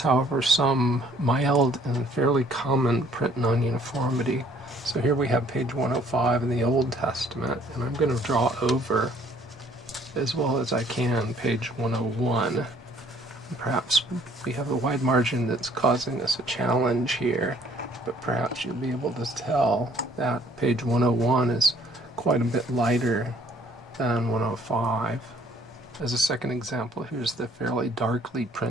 however, some mild and fairly common print non-uniformity. So here we have page 105 in the Old Testament, and I'm going to draw over, as well as I can, page 101. And perhaps we have a wide margin that's causing us a challenge here, but perhaps you'll be able to tell that page 101 is quite a bit lighter than 105. As a second example, here's the fairly darkly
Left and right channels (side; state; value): both; normal; correlation 0.60